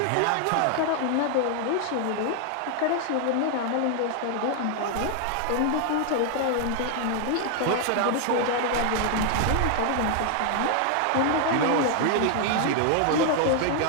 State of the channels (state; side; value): different; both; correlation 0.00